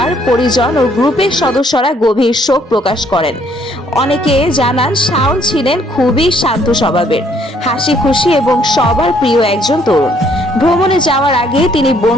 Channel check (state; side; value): normal; both; correlation 0.66